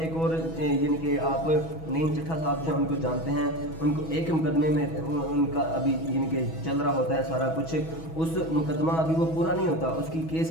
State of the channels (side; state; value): right; late; 6.2 ms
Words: एक और यानी कि आप नईम चट्ठा साहब जो हैं उनको जानते हैं, उनको एक मुकदमे में उनका अभी यानी कि चल रहा होता है सारा कुछ, उस मुकदमा अभी वो पूरा नहीं होता, उसकी